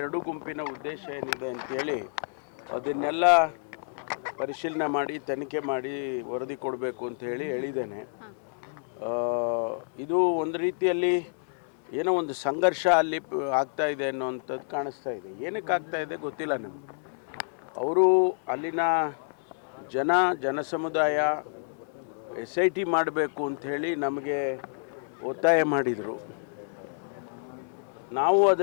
ಎರಡು ಗುಂಪಿನ ಉದ್ದೇಶ ಏನಿದೆ ಅಂತೇಳಿ ಅದನ್ನೆಲ್ಲ ಪರಿಶೀಲನೆ ಮಾಡಿ ತನಿಖೆ ಮಾಡಿ ವರದಿ ಕೊಡಬೇಕು ಅಂತ ಹೇಳಿದ್ದೇನೆ. ಇದು ಒಂದು ರೀತಿಯಲ್ಲಿ ಏನೋ ಒಂದು ಸಂಘರ್ಷ ಅಲ್ಲಿ ಆಗ್ತಾ ಇದೆ ಅನ್ನೋವಂಥದ್ದು ಕಾಣಿಸ್ತಾ ಇದೆ. ಏನಕ್ಕೆ ಆಗ್ತಾ ಇದೆ ಗೊತ್ತಿಲ್ಲ ನಮಗೆ. ಅವರು ಅಲ್ಲಿನ ಜನಸಮುದಾಯ SIT ಮಾಡಬೇಕು ಅಂಥೇಳಿ ನಮಗೆ ಒತ್ತಾಯ ಮಾಡಿದರು. ನಾವು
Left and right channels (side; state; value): right; silent; 59 dB below the other